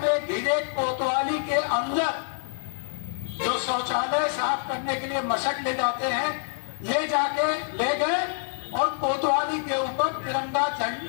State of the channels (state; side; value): silent; right; digital silence